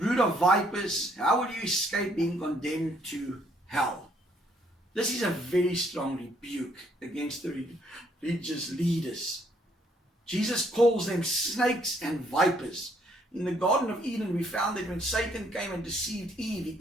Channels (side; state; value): both; normal; correlation 0.68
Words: of vipers, how will you escape being condemned to hell? This is a very strong rebuke against the religious leaders. Jesus calls them snakes and vipers. In the Garden of Eden, we found that when Satan came and deceived Eve, he